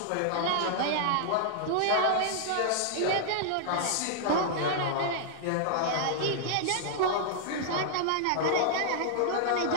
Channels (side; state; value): both; different; correlation -0.01